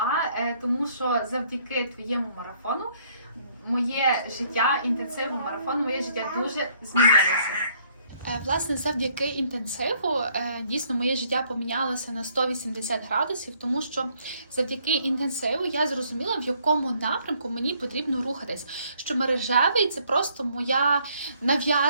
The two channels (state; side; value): inverted; both; correlation -0.65